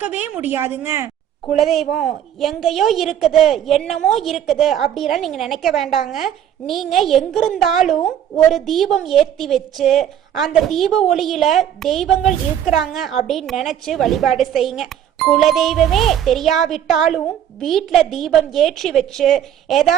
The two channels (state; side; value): quieter; left; 10.1 dB